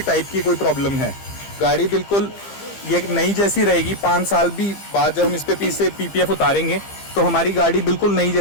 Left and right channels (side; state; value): right; late; 15 ms